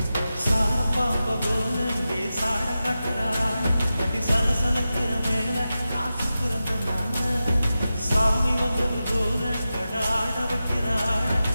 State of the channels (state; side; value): inverted; both; correlation -0.93